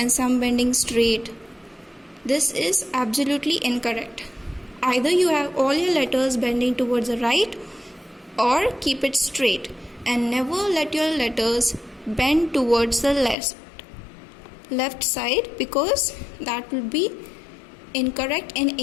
some bending straight. This is absolutely incorrect. Either you have all your letters bending towards the right or keep it straight, and never let your letters bend towards the left side, because that will be incorrect in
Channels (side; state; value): right; drops out; at 13.4 s